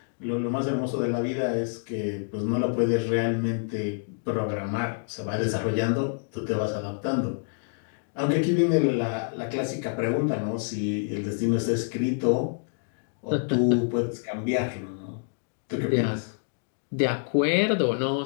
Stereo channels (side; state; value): right; silent; digital silence